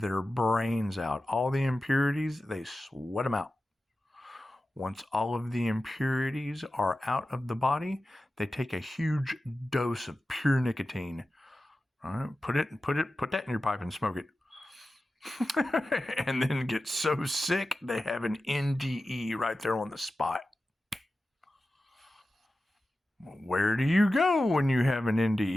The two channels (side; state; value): both; normal; correlation 0.94